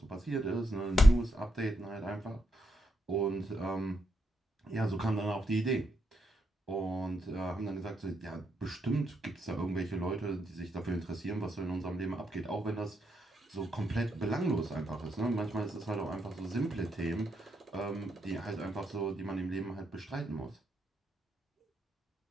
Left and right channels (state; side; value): normal; both; correlation 0.80